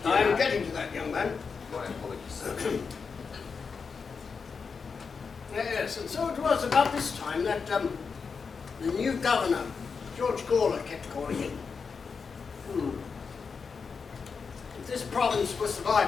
I'm getting to that, young man. My apologies. Yes, and so it was about this time that the new governor, George Gawler, kept calling in. If this province was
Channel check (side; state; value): right; quieter; 5.4 dB